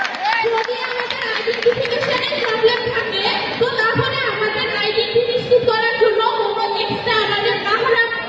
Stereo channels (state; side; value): identical; both; correlation 1.00